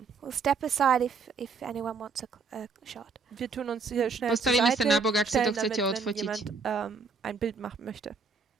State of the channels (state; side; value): quieter; left; 4.8 dB